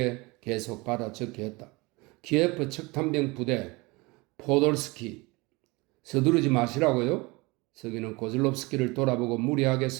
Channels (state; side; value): quieter; left; 24.7 dB